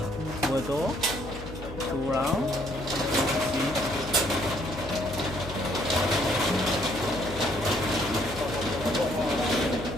full door, 2 rounds.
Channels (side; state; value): left; noise; hum, 12 dB below the sound